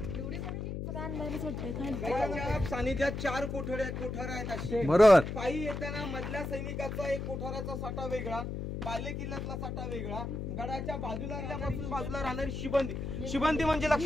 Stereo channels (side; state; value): left; noise; hum, 4 dB below the sound